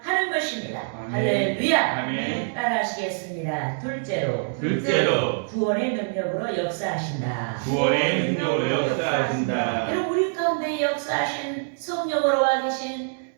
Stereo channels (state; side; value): silent; left; digital silence